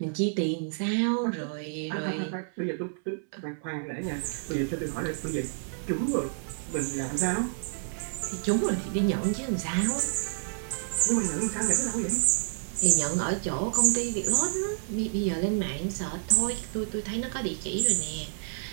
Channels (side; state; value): left; silent; 59 dB below the other